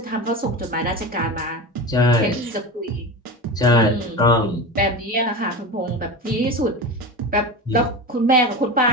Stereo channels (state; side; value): normal; both; correlation 0.26